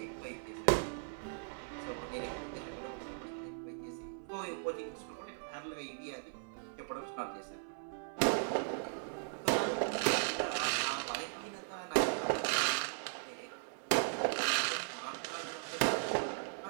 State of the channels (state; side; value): silent; left; 52 dB below the other